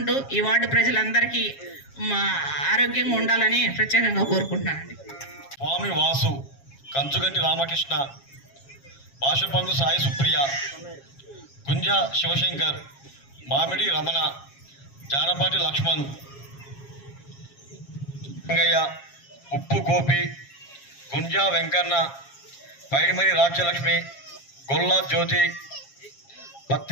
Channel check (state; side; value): late; right; 7.3 ms